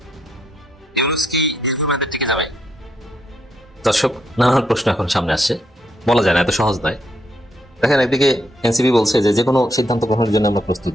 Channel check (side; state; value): both; normal; correlation 0.77